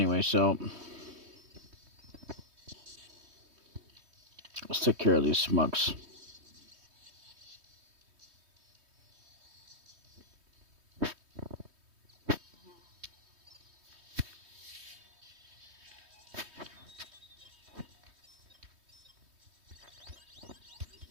so let's take care of these smucks.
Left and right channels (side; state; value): left; late; 3.2 ms